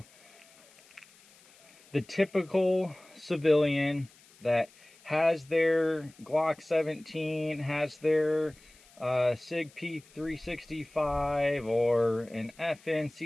the typical civilian that has their Glock 17, has their SIG P365 or an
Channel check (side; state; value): left; noise; hiss, 27 dB below the sound